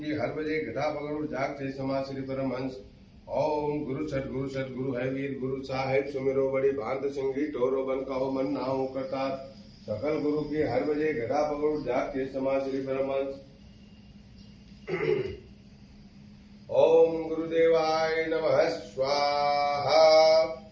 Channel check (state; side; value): identical; both; correlation 1.00